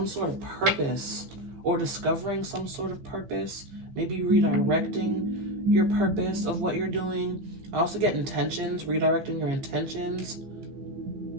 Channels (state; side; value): late; left; 15 ms